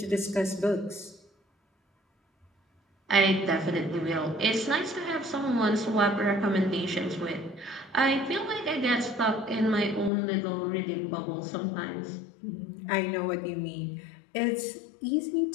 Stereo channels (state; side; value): drops out; right; at 10.1 s